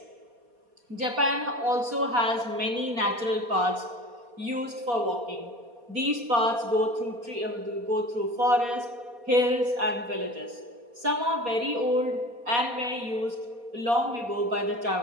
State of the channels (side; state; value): left; late; 4.2 ms